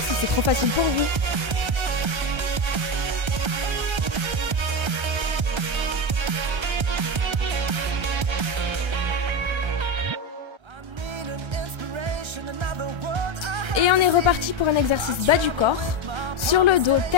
c'est trop facile pour vous. Et on est reparti pour un exercice bas du corps. Sur le dos,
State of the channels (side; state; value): left; late; 1.3 ms